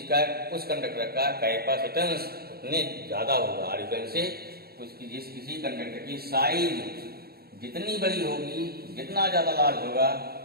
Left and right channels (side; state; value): left; late; 0.45 ms